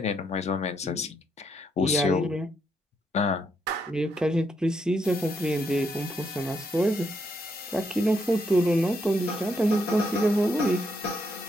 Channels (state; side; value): normal; both; correlation 0.77